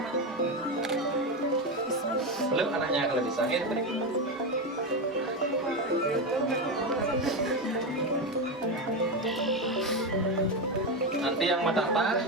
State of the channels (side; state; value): both; normal; correlation 0.13